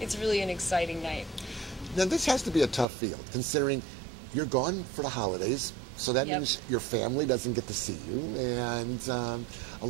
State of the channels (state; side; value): drops out; left; at 2.9 s